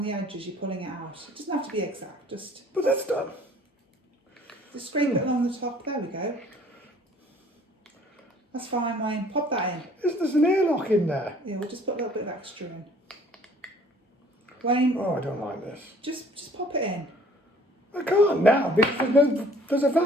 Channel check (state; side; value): normal; both; correlation 0.55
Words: the edges, you're pulling it out. It doesn't have to be exact, just But that's done. scrape it along the top. There we go. That's fine, Wayne. Pop that in. There's an airlock in there. Yeah, we'll just put a little bit of extra in. Wayne, Oh, I don't like this. just pop it in. I can't now because there's a